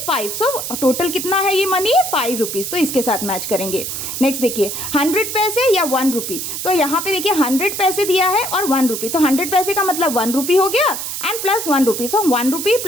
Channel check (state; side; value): noise; right; hiss, 5 dB below the sound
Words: 5। सो टोटल कितना है ये मनी, 5 रुपीज। तो इसके साथ मैच करेंगे। नेक्स्ट देखिए 100 पैसे या 1 रुपी। तो यहाँ पे देखिए 100 पैसे दिया है और 1 रुपी, तो 100 पैसे का मतलब 1 रुपी हो गया एंड प्लस 1 रुपी। सो 1 रुपी